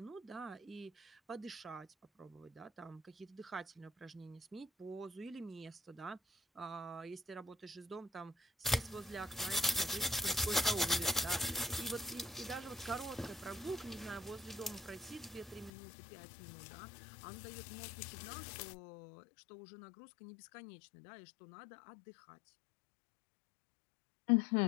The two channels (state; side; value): drops out; right; at 15.7 s